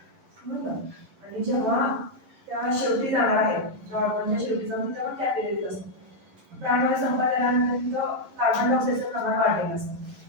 समजलं? आणि जेव्हा त्या शेवटी जाणार आहे, ज्या ऑर्गनच्या शेवटी जाऊन तिथं पण कॅपिलरीज असतात. प्राणवायू संपत आल्यानंतर तिथं कार्बन डायऑक्साईडचं प्रमाण वाढलेलं असतं.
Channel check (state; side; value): late; left; 10 ms